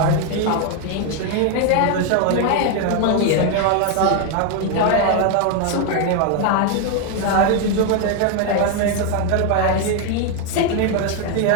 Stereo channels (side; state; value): both; different; correlation 0.01